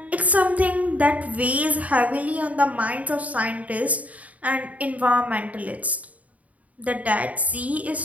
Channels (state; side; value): late; left; 0.070 ms